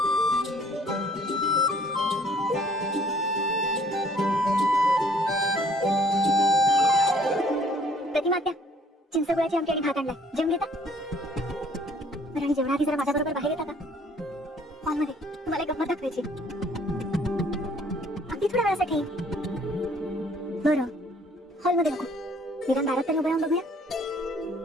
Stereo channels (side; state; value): both; normal; correlation 0.59